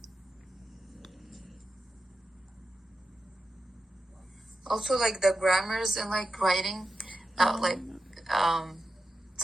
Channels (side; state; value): both; normal; correlation 0.91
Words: Also, like the grammars and like writing,